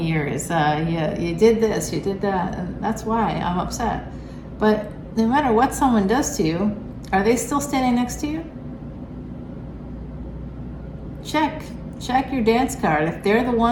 years. You did this, you did that, and that's why I'm upset. But no matter what someone does to you, are they still standing next to you? Check your dance card. If they're the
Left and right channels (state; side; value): identical; both; correlation 1.00